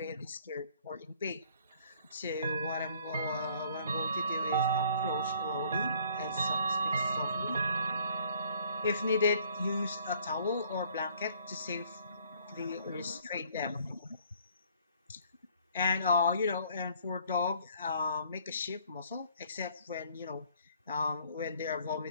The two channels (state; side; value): inverted; both; correlation -0.60